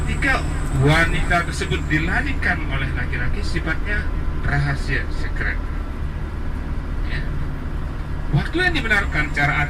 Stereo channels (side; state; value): both; identical; correlation 1.00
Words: wanita tersebut dilarikan oleh laki-laki sifatnya rahasia, secret ya. Waktu yang dibenarkan cara